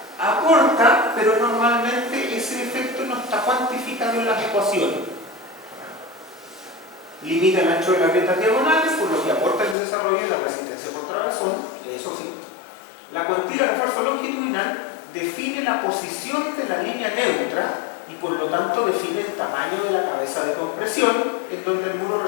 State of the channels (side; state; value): right; drops out; at 9.8 s